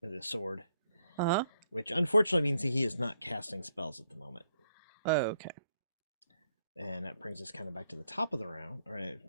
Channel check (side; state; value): both; inverted; correlation -0.73